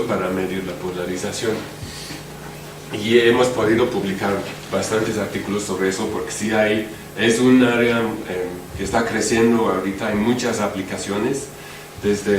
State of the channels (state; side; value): identical; both; correlation 1.00